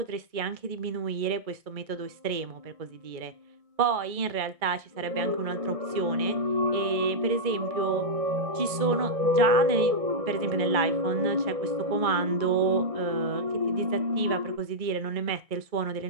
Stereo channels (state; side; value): late; left; 1.6 ms